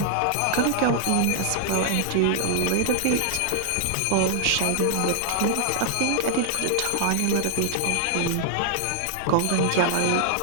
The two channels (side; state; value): both; different; correlation 0.00